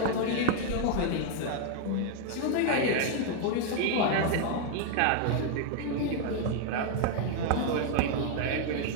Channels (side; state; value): both; different; correlation 0.00